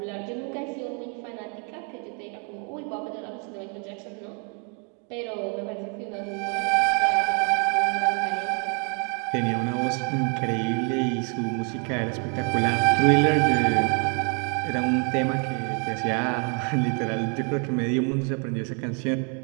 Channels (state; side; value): quieter; left; 38.4 dB